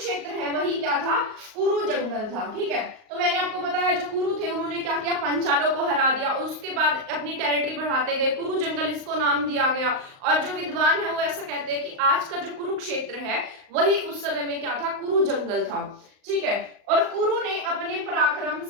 है वही क्या था, कुरु जंगल था, ठीक है। तो मैंने आपको बताया जो कुरु थे उन्होंने क्या किया, पांचालों को हरा दिया, उसके बाद अपनी टेरिटरी बढ़ाते गए, कुरु जंगल इसको नाम दिया गया। और जो विद्वान है वो ऐसा कहते हैं कि आज का जो कुरुक्षेत्र है वही उस समय में क्या था, कुरु जंगल था, ठीक है। और कुरु ने अपने पराक्रम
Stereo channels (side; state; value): left; late; 38 ms